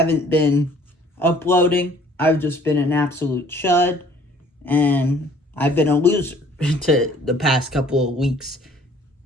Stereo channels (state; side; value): normal; both; correlation 0.55